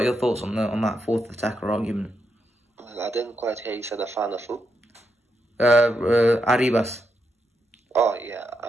your thoughts on that fourth attacker argument? Well, I didn't quite hear you said a fan of who? Arribas. Oh yeah,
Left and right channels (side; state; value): both; normal; correlation 0.83